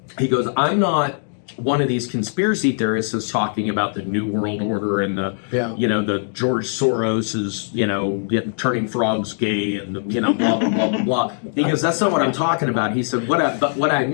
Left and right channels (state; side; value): silent; right; digital silence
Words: he goes, I'm not one of these conspiracy theorists is talking about the New World Order and the, the George Soros is, turning frogs gay and, blah, blah, blah, blah, blah. He goes, that's not what I'm talking about. He said, but what I